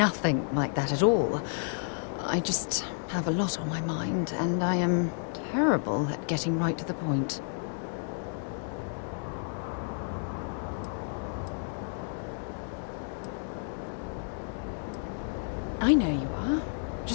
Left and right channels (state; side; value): silent; right; digital silence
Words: like that at all. I just have a lot on my mind, and I am terrible at getting right to the point. I know you are.